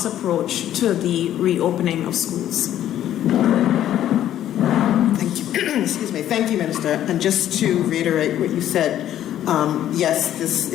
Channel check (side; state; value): right; quieter; 11.7 dB